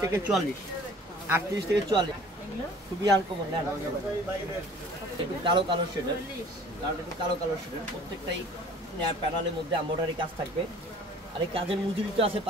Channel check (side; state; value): both; normal; correlation 0.49